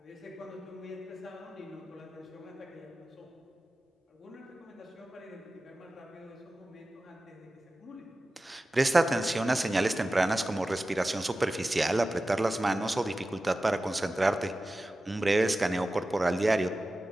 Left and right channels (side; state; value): both; normal; correlation 0.94